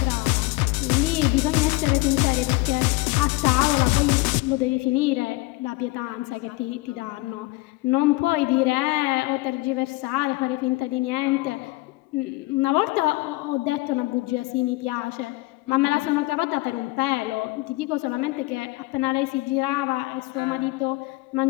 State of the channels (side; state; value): right; quieter; 21.9 dB